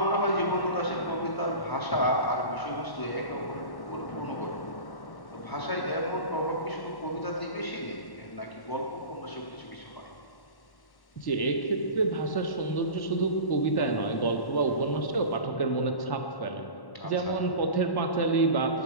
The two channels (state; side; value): late; right; 1.1 ms